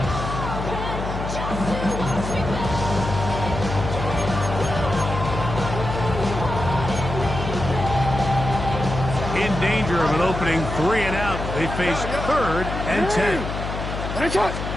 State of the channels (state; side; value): noise; left; hum, 5 dB below the sound